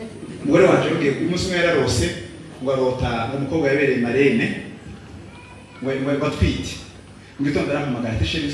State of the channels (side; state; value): both; identical; correlation 1.00